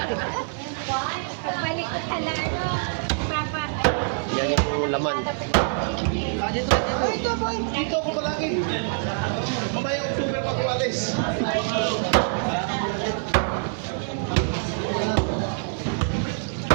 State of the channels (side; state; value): left; silent; digital silence